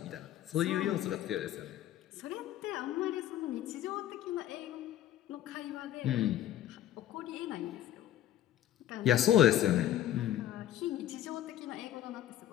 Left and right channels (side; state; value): right; quieter; 12.2 dB